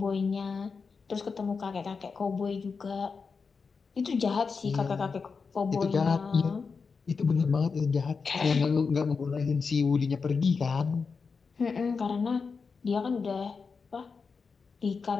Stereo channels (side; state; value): right; quieter; 5.1 dB